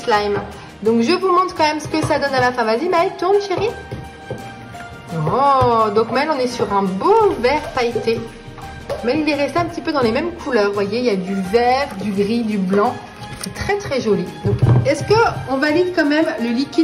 Donc, je vous montre quand même ce que ça donne à la fin. Vas-y, Maëlle, tourne, chérie. Oh, donc Maëlle, on est sur un beau vert pailleté. Mais il est resté un petit peu dans les mêmes couleurs. Vous voyez, il y a du vert, du gris, du blanc. C'est très très joli. Donc, est-ce qu'on valide quand même le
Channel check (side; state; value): both; identical; correlation 1.00